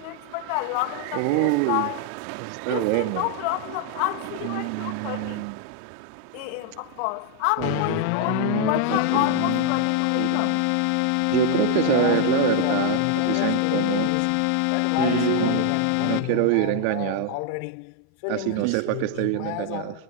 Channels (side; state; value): both; different; correlation 0.00